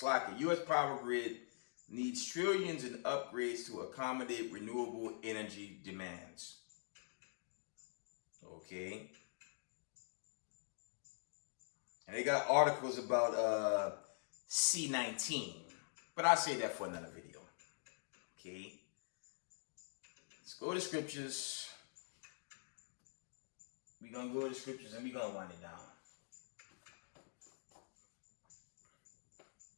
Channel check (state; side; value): silent; right; digital silence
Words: power grid needs trillions in upgrades to accommodate renewable energy demands. Okay. And they got articles about C-19. But I'll say that for another video. Okay. Let's go to scriptures. We're going to go to scriptures and we're going to wind it down.